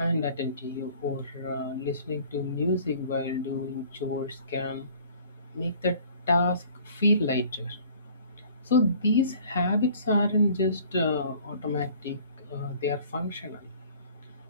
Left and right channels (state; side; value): inverted; both; correlation -0.52